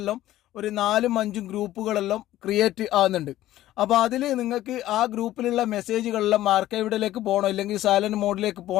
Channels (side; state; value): right; quieter; 14.4 dB